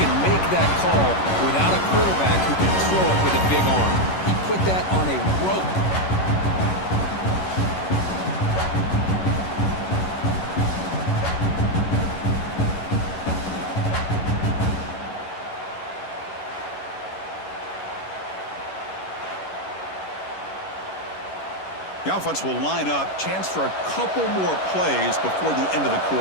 can make that call without a quarterback who can throw it with a big arm. He put that on a rope. The offense will line up, chance for a couple more plays before the end of the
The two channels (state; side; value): late; right; 11 ms